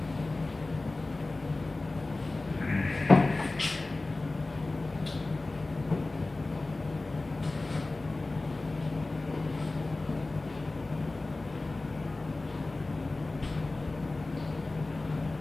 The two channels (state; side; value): quieter; right; 3.1 dB